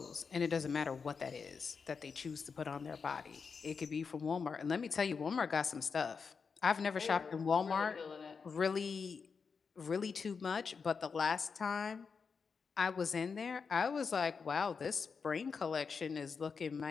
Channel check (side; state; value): right; quieter; 5.5 dB